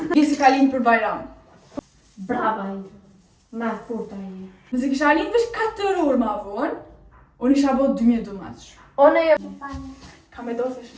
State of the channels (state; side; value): identical; both; correlation 1.00